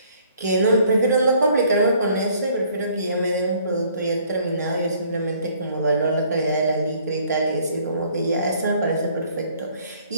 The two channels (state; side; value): inverted; both; correlation -0.60